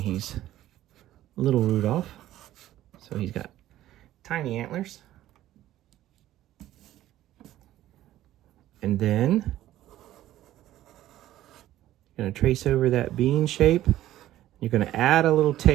little Rudolph, so he's got tiny antlers. And then you're going to trace over that bean shape. You're going to add a little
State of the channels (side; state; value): left; quieter; 13.9 dB